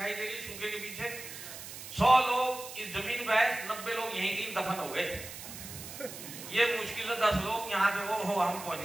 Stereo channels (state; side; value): noise; right; hiss, 11 dB below the sound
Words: दे रही सूखे के पीछे। 100 लोग इस जमीन पे है, 90 लोग यहीं कहीं दफन हो गए। ये मुश्किल है 10 लोग यहाँ पे हो हम पहुंच